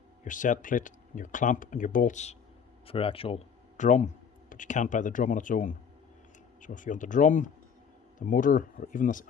your set plate, your clamp and your bolts for your actual drum, but you can't buy the drum on its own. So if you want the drum, the motor, or even this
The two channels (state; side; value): quieter; right; 7.0 dB